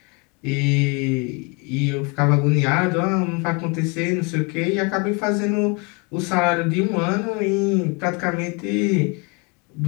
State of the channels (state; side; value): quieter; right; 30.6 dB